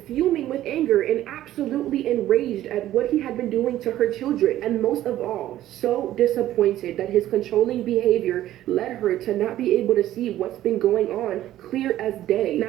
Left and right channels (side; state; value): left; quieter; 13.5 dB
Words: fuming with anger, and absolutely enraged at what he had been doing to her children. And most of all, so disappointed that his controlling behavior led her to not be able to see what's been going on clear as day.